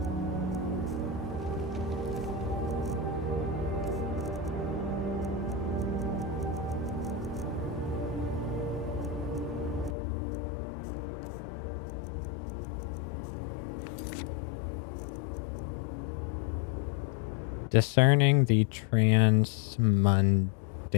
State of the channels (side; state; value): right; drops out; at 10.0 s